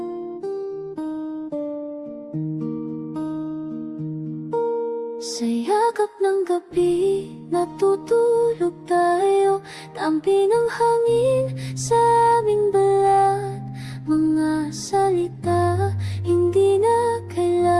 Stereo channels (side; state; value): both; identical; correlation 1.00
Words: Sa yakap ng gabi, natutulog tayo. Tampi ng hangin sa aming balat. Mga salita, hindi na